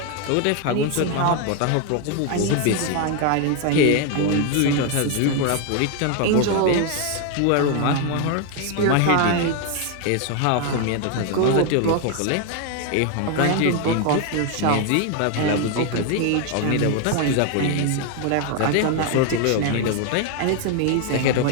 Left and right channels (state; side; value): different; both; correlation 0.01